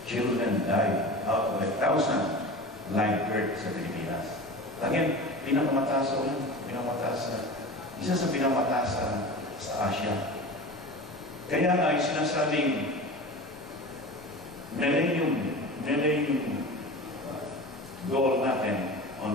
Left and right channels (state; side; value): normal; both; correlation 0.33